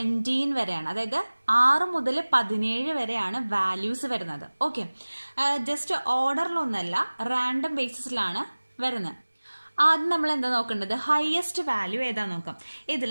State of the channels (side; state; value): both; inverted; correlation -1.00